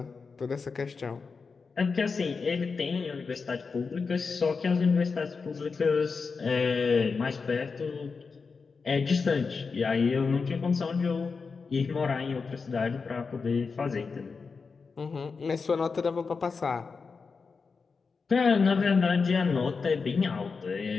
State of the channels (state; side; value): quieter; right; 4.9 dB